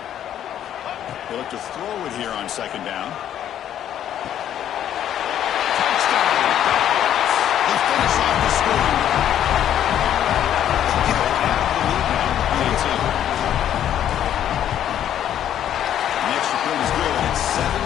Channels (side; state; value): right; quieter; 10.6 dB